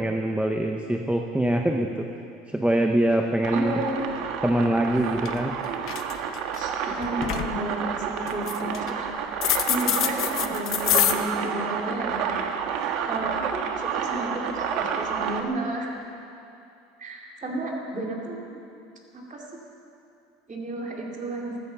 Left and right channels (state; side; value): normal; both; correlation 0.55